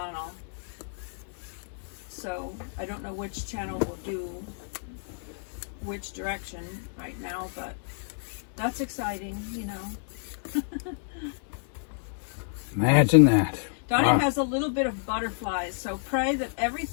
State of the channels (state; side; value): silent; right; digital silence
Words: So I don't know which channel will do which direction right now, but that's exciting, Imagine that. Donny has a little bit of butterflies, so pray that